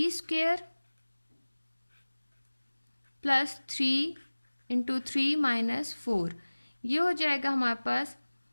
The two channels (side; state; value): both; inverted; correlation -1.00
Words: square plus 3 into 3 minus 4, ये हो जाएगा हमारे पास